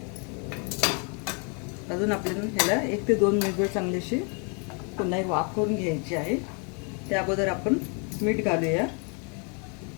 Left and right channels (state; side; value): quieter; right; 36.6 dB